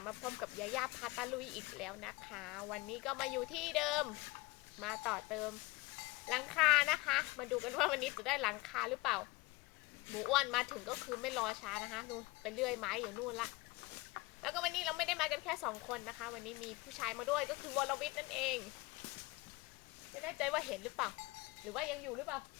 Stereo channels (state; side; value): quieter; right; 22.5 dB